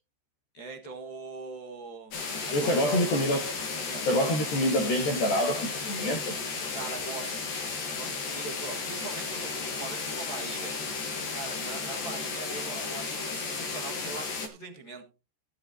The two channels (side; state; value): right; late; 13 ms